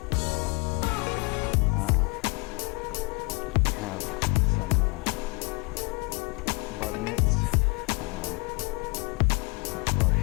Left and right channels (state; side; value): quieter; right; 28.6 dB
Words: We have some bug nets for our